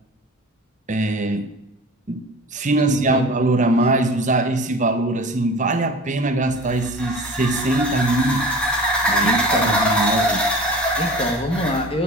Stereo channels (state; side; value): normal; both; correlation 0.39